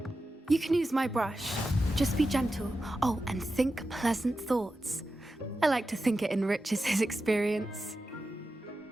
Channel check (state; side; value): normal; both; correlation 0.91